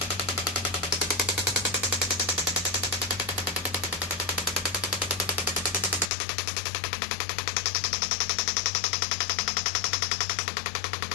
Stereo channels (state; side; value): drops out; right; at 6.1 s